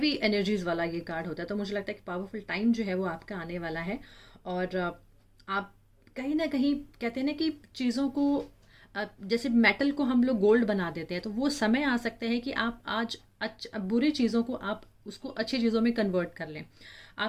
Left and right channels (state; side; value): identical; both; correlation 1.00